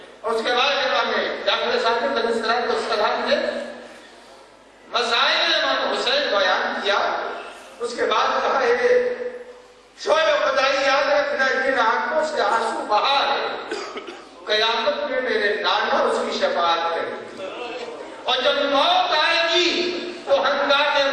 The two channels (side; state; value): both; identical; correlation 1.00